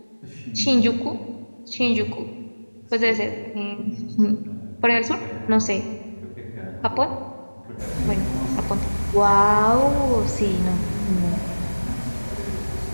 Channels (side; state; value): both; inverted; correlation -1.00